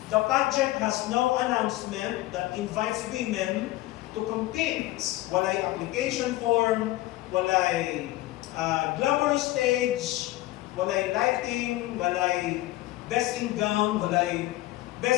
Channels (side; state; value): right; quieter; 17.3 dB